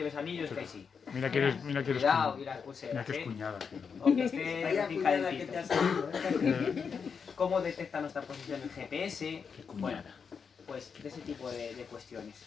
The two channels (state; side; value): quieter; right; 6.1 dB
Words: anillos, que ahí sí. Mira que eres Cuidado, y las mira pulseras, que es ¿eh? cuñada. O que esté Vaya bien cuñada que calentito. te has salido, ¿Cómo detecta nuestra posición el GPS? Bueno, pues de ese tipo de cuestiones.